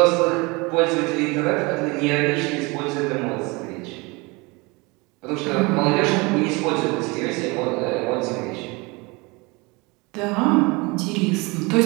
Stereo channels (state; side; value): quieter; left; 26.2 dB